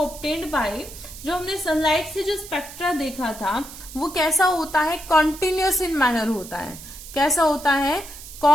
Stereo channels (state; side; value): noise; right; hiss, 15 dB below the sound